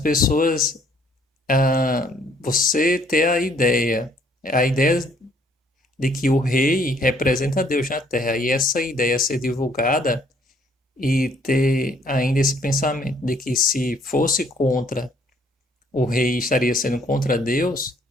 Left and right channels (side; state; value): both; normal; correlation 0.63